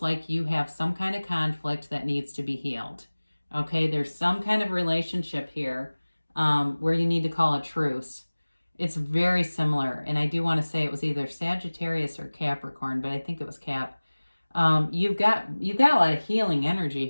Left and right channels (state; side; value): inverted; both; correlation -1.00